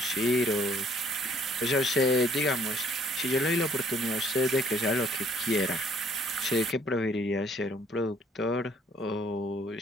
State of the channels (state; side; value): normal; both; correlation 0.62